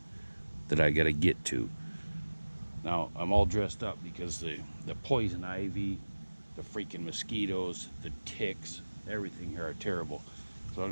that I gotta get to. Now I'm all dressed up because the poison ivy, the freaking mosquitoes, the ticks, everything here are terrible. So what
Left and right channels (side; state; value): both; inverted; correlation -1.00